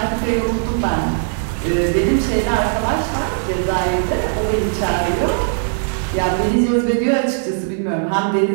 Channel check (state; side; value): silent; left; 57 dB below the other